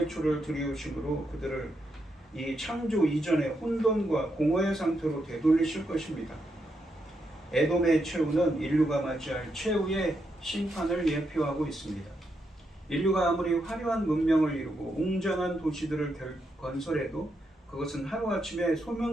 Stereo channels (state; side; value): normal; both; correlation 0.82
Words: 줄을 들이우심으로 그들을 이 창조 이전의 혼돈과 공허의 상태로 되돌리실 것입니다. 에돔의 최후는 인류가 맞이할 최후의 심판을 예표하고 있습니다. 인류가 아무리 화려한 문명을 이루고 웅장한 도시들을 건설해도 그것은 하루아침에